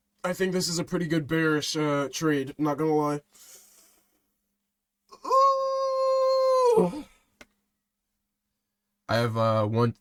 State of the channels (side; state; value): both; identical; correlation 1.00